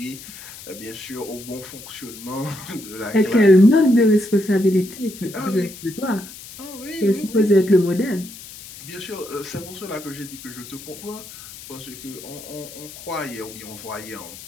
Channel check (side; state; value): left; noise; hiss, 15 dB below the sound